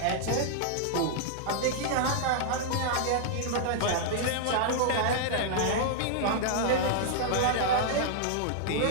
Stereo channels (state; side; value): different; both; correlation -0.01